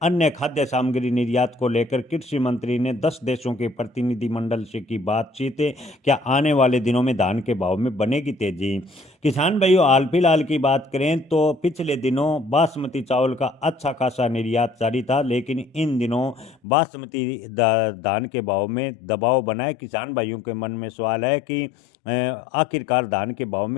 अन्य खाद्य सामग्री निर्यात को लेकर कृषि मंत्री ने 10 देशों के प्रतिनिधिमंडल से की बातचीत। क्या आने वाले दिनों में धान के भाव में बनेगी तेजी? किसान भाइयों, हाल फिलहाल की बात करें तो पिछले दिनों बासमती चावल का अच्छा खासा निर्यात जारी था, लेकिन इन दिनों बासमती धान के भाव में दबाव बना है। किसान भाइयों के मन में सवाल है कि आखिरकार धान के भाव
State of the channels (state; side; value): drops out; right; at 16.6 s